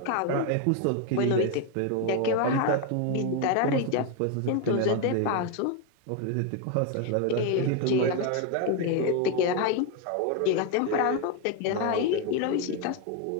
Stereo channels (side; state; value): both; different; correlation 0.01